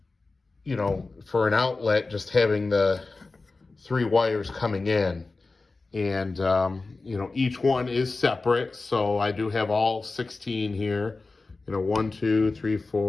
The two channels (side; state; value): right; quieter; 3.7 dB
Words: for an outlet, just having the 3 wires coming in. And each one is separate, so I do have all 16 here. 1, 2, 3,